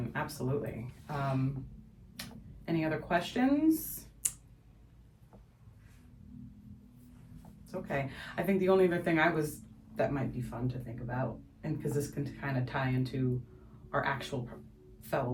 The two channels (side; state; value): both; identical; correlation 1.00